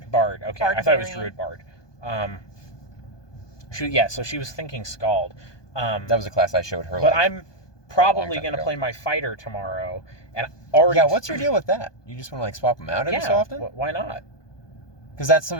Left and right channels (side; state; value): right; late; 1.2 ms